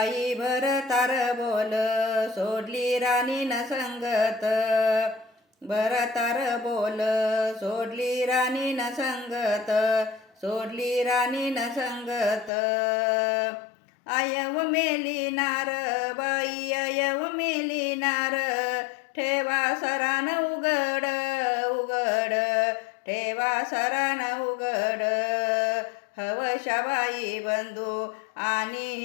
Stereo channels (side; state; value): right; drops out; at 12.5 s